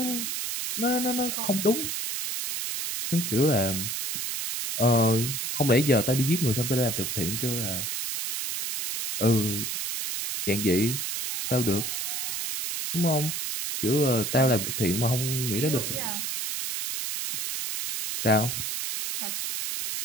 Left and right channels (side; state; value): right; noise; hiss, 3 dB below the sound